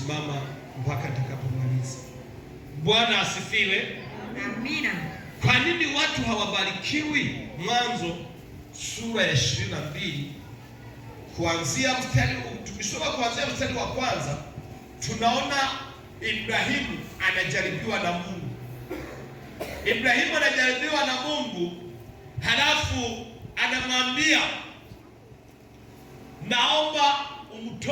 mpaka nitakapomaliza. Bwana asifiwe. Amina. Kwa nini watu hawabarikiwi? Mwanzo sura ya 22 kuanzia mstari, tukisoma kuanzia mstari wa kwanza, tunaona Ibrahimu anajaribiwa na Mungu. Ibrahimu anajaribiwa na Mungu, halafu anamwambia, naomba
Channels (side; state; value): both; identical; correlation 1.00